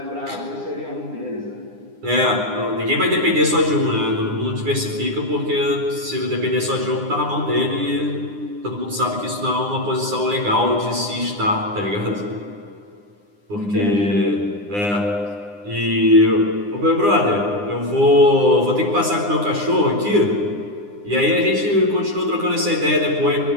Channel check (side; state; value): left; late; 9.8 ms